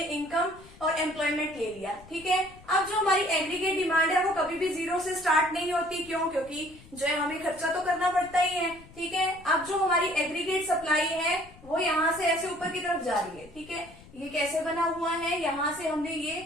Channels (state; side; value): noise; left; rumble, 22 dB below the sound